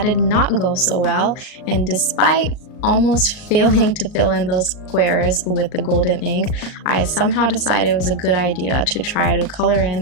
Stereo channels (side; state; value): right; late; 38 ms